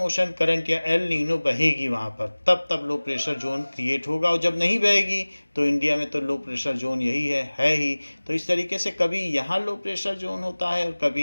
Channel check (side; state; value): both; inverted; correlation -1.00